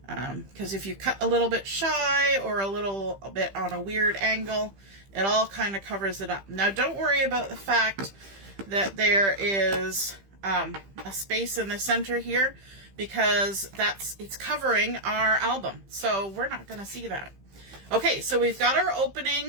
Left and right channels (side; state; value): left; late; 15 ms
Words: Because if you cut a little bit shy or a little bit on a weird angle, it all kind of covers it up. Now don't worry about the fact that there is a space in the center here, because it's covering our album, so we're not going to see that. Okay, so we've got our